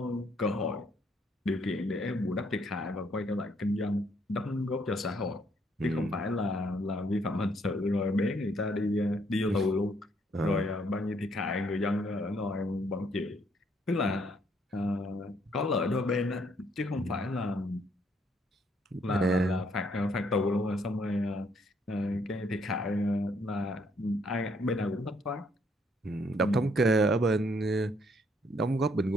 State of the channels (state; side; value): normal; both; correlation 0.68